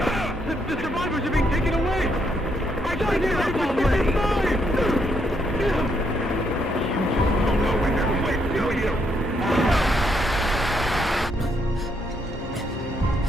Sign it up already! You don't know when to quit, do you?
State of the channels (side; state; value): both; normal; correlation 0.76